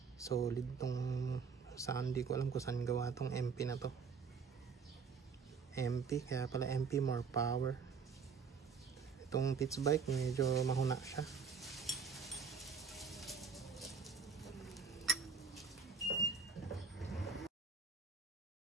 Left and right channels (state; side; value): quieter; left; 5.5 dB